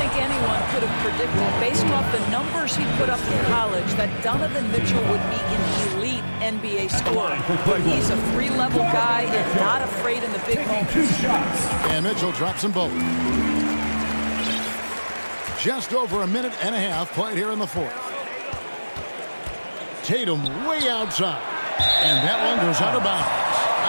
anyone could have predicted, based off the numbers he put up in college, that Donovan Mitchell would be an elite NBA scorer. But he's a three-level guy and not afraid in the big moments. And Mitchell drops them both. Just over a minute and a half played here in the fourth. Tatum way outside. And that one goes out of bounds.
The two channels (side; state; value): both; inverted; correlation -1.00